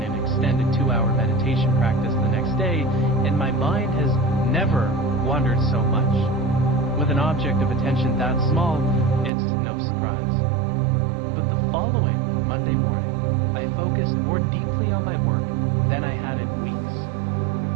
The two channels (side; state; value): left; drops out; at 9.3 s